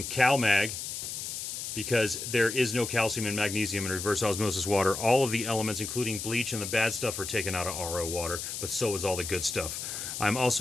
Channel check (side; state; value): left; noise; hiss, 6 dB below the sound